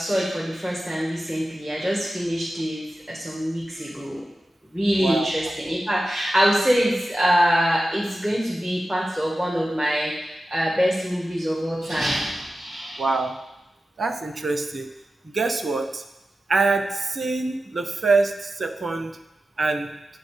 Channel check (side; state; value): both; normal; correlation 0.93